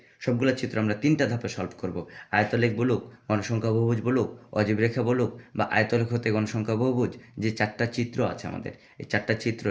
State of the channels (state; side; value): identical; both; correlation 1.00